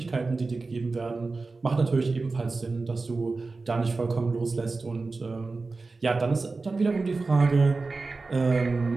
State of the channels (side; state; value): left; quieter; 3.8 dB